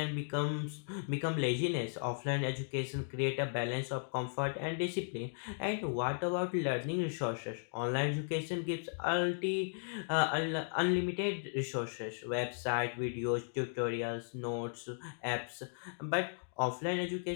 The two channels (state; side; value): silent; right; digital silence